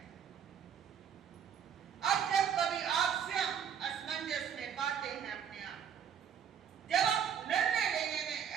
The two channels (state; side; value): quieter; left; 8.1 dB